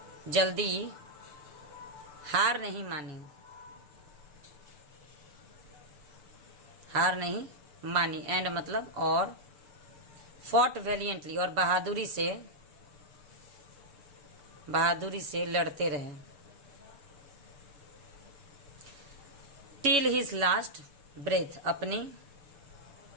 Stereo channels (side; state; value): left; late; 7.1 ms